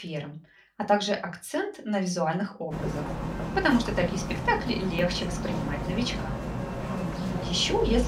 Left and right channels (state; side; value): identical; both; correlation 1.00